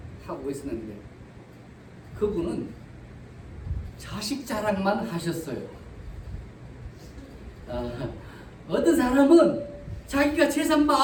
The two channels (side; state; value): both; identical; correlation 1.00